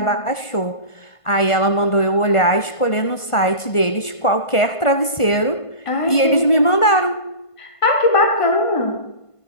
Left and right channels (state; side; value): late; right; 1.5 ms